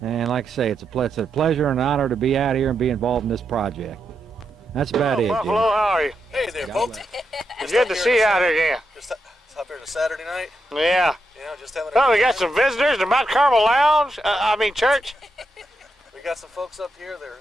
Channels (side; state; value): both; normal; correlation 0.84